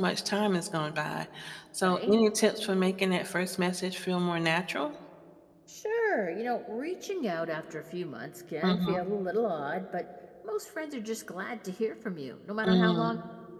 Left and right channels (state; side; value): identical; both; correlation 1.00